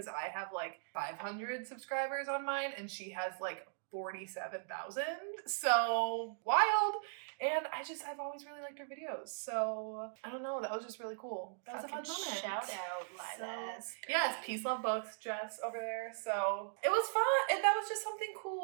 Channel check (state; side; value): silent; left; digital silence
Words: I have like 500 subscribers on mine and she has like 47,000. So wild. And I've always really liked her videos. So I don't know, that was just really cool. That was a fun moment. Shout out, Lilas. Yes, Peace Love Books, Jess over there. So it was fun, and that was just something